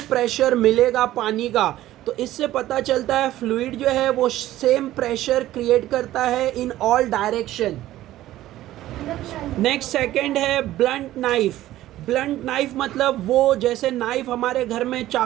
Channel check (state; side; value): quieter; left; 14.6 dB